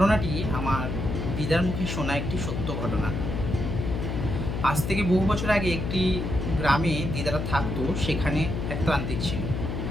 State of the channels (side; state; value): left; noise; hum, 3 dB below the sound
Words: আমার দিদার মুখে শোনা একটি সত্য ঘটনা। আজ থেকে বহু বছর আগে একটি গ্রামে দিদারা থাকতো। সেখানে এক তান্ত্রিক ছিল।